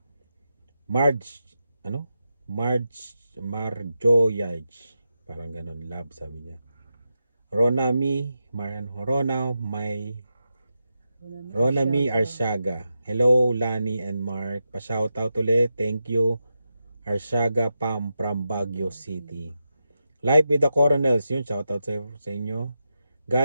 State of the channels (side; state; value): both; inverted; correlation -0.88